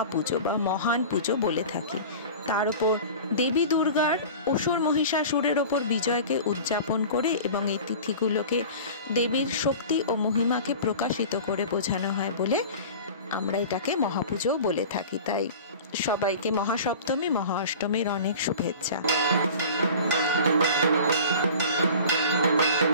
বা মহান পুজো বলে থাকি। তার উপর দেবী দুর্গার অসুর মহিষাসুরের ওপর বিজয়কে উদযাপন করে এবং এই তিথিগুলোকে দেবীর শক্তি ও মহিমাকে প্রকাশিত করে বোঝানো হয় বলে আমরা এটাকে মহাপুজো বলে থাকি। তাই সবাইকে মহাসপ্তমী, মহা অষ্টমীর অনেক শুভেচ্ছা।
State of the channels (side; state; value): both; inverted; correlation -0.38